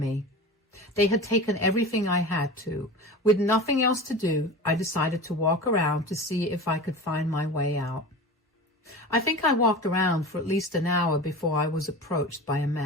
They had taken everything I had to. With nothing else to do, I decided to walk around to see if I could find my way out. I think I walked around for at least an hour before I was approached by a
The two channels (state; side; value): normal; both; correlation 0.32